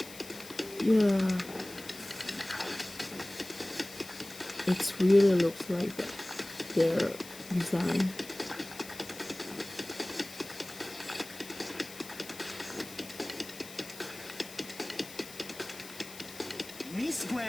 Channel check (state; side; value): noise; left; hiss, 15 dB below the sound